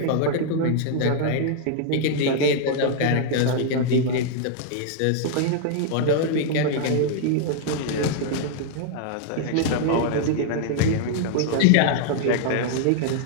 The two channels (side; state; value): both; different; correlation -0.01